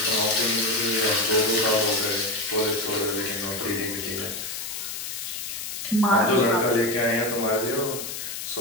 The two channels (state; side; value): noise; left; hiss, 6 dB below the sound